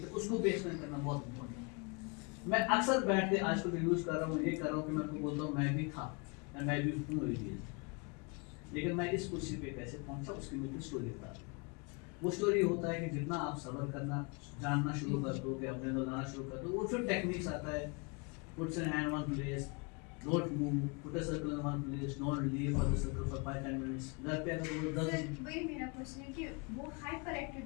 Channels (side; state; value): right; quieter; 32.0 dB